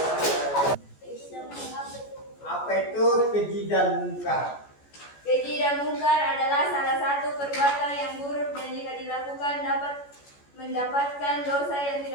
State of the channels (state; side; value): late; right; 14 ms